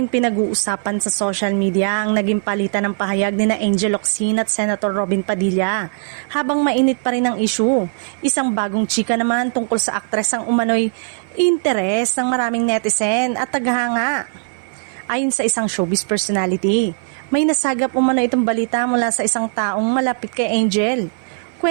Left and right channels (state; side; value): silent; left; 58 dB below the other